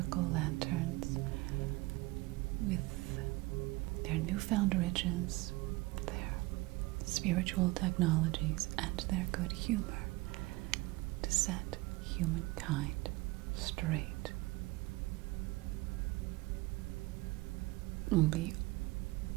lanterns with their newfound riches, their spiritual technologies, and their good humor to set humankind straight. The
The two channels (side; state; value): left; quieter; 22.0 dB